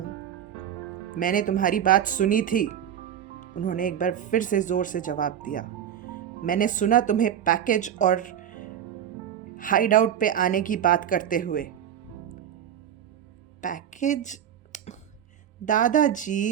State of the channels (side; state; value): left; quieter; 9.7 dB